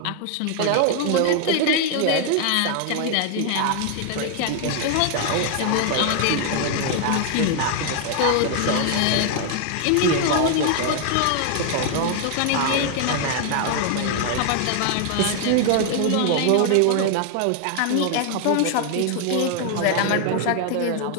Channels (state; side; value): different; both; correlation 0.00